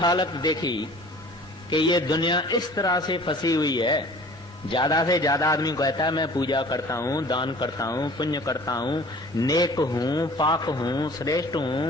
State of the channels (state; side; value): normal; both; correlation 0.47